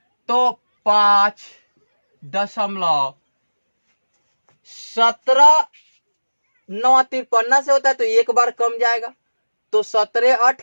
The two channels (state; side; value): inverted; both; correlation -1.00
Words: तो 5.17 9 53 से होता है तो एक बार कम जाएगा, तो 17 8